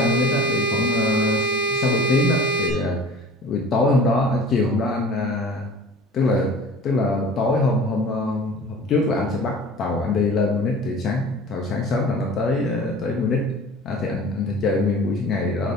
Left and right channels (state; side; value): normal; both; correlation 0.42